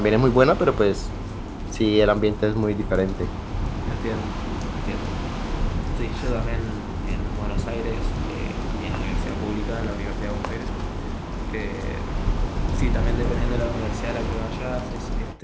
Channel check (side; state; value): both; identical; correlation 1.00